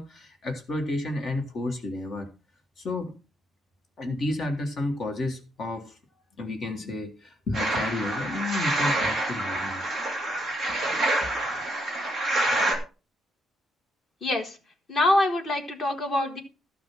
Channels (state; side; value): normal; both; correlation 0.76